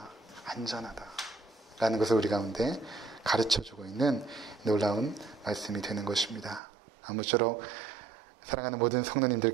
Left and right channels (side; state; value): left; drops out; at 6.6 s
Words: 라는 것을 우리 가운데 가르쳐주고 있는 놀라운 말씀이 되는 것입니다. 아무쪼록 사랑하는 모든